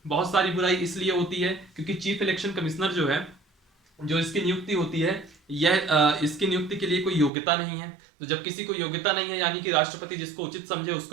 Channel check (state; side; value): drops out; left; at 7.3 s